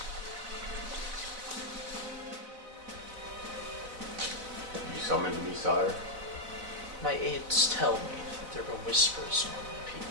You summoned me, sire? My aides tell me that there were whispers among the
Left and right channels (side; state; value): left; late; 4.0 ms